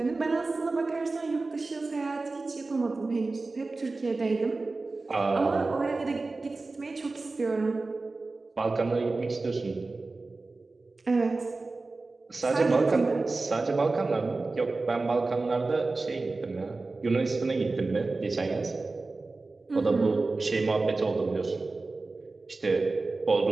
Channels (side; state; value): left; quieter; 3.5 dB